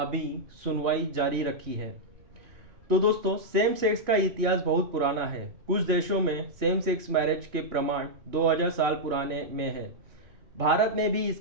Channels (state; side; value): late; left; 2.9 ms